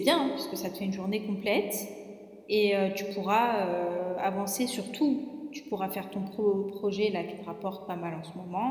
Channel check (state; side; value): identical; both; correlation 1.00